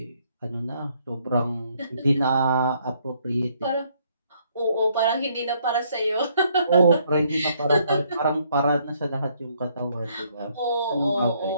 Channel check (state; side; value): inverted; both; correlation -0.69